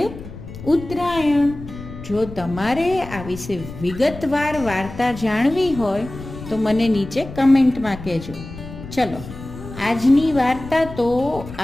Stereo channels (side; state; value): left; noise; rumble, 13 dB below the sound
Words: ઉત્તરાયણ. જો તમારે આ વિશે વિગતવાર વાર્તા જાણવી હોય તો મને નીચે કમેન્ટમાં કહેજો. ચલો, આજની વાર્તા તો